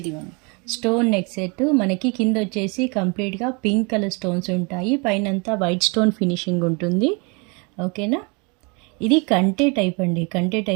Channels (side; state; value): left; quieter; 31.5 dB